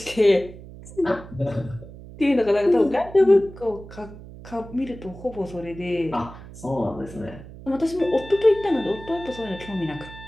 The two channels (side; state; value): right; noise; hum, 16 dB below the sound